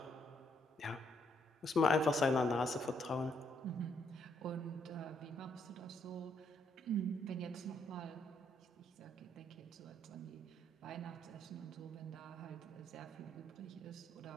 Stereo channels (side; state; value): both; normal; correlation 0.72